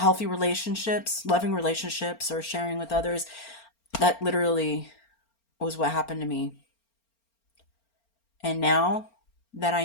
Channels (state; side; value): late; right; 4.4 ms